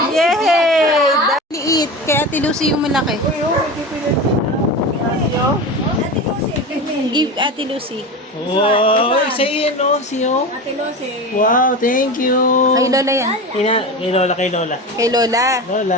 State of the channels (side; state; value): both; normal; correlation 0.27